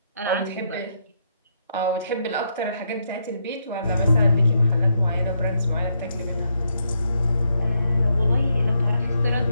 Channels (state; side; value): inverted; both; correlation -0.77